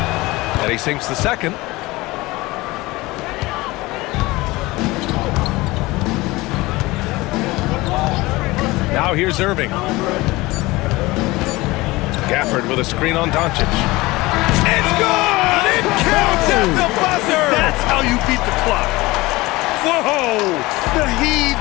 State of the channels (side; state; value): right; quieter; 20.8 dB